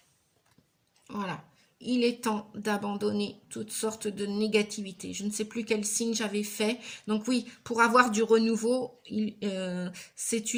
Voilà. Il est temps d'abandonner toutes sortes de négativités. Je ne sais plus quel signe j'avais fait. Donc oui, pour avoir du renouveau, c'est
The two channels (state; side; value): identical; both; correlation 1.00